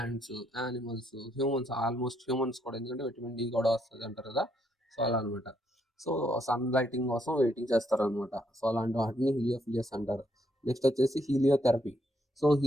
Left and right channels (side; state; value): both; normal; correlation 0.74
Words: animals, humans, almost humans కూడా, ఎందుకంటే విటమిన్ డి కూడా వస్తుంది అంటారు కదా, సో అలా అనమాట. సో సన్ లైటింగ్ కోసం వెయిటింగ్ చేస్తారనమాట. సో అలాంటి వాటిని హీలియోఫిలియస్ అంటారు. నెక్స్ట్ వచ్చేసి హీలియోథెరపీ. సో